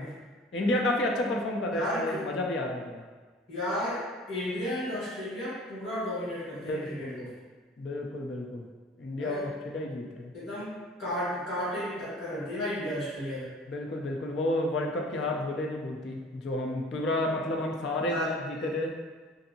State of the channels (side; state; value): both; normal; correlation 0.46